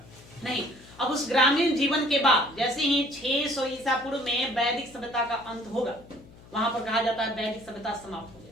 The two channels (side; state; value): left; noise; hum, 22 dB below the sound